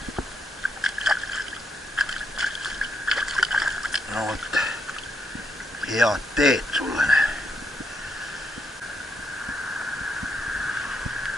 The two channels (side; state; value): both; normal; correlation 0.78